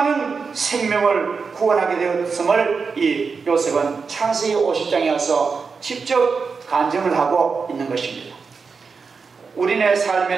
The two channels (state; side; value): quieter; left; 5.1 dB